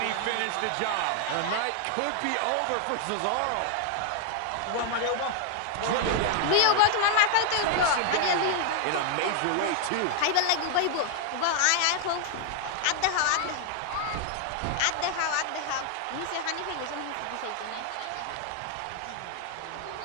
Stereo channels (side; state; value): both; different; correlation 0.00